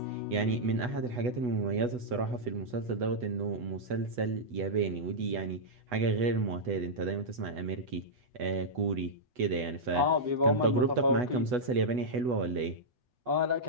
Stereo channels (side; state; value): left; late; 8.1 ms